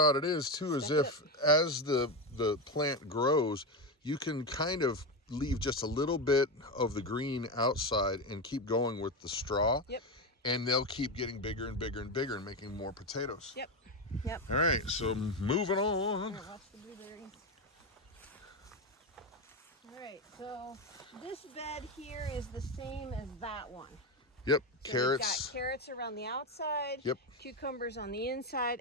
it is too, is as the plant grows, you can kind of leave just a little bit of the green outside and keep going with the straw. Yep. And they'll keep getting bigger and bigger and bigger and making more potatoes. Yep. Yep. All right, so moving on. Here, watch the blueberries. All right, so this bed here is the same as that one. Yep, so carrots. We've got carrots around the outside. Yep. Cucumbers on the inside,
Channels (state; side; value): normal; both; correlation 0.14